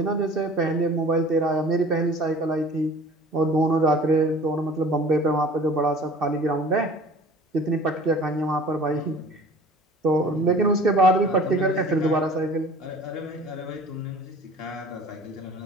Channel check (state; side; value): normal; both; correlation 0.45